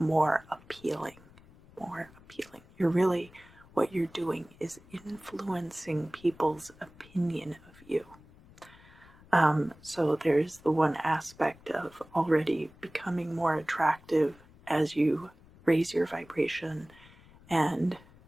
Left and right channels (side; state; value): left; noise; rumble, 24 dB below the sound